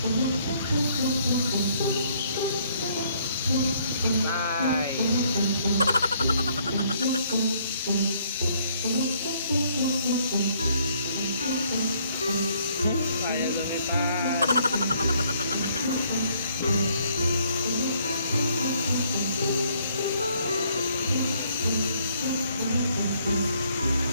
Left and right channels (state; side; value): inverted; both; correlation -0.66